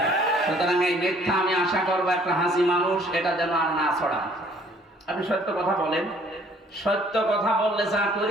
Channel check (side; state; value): both; normal; correlation 0.59